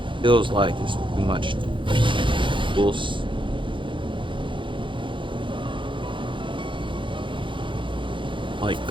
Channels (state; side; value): late; left; 0.24 ms